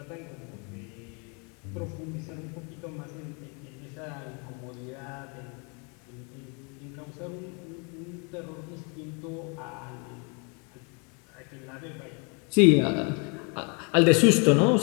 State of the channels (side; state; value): right; quieter; 34.5 dB